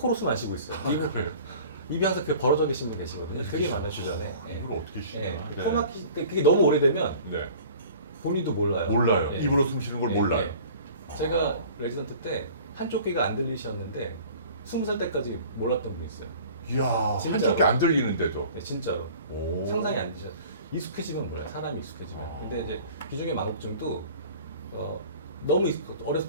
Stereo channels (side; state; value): both; inverted; correlation -0.45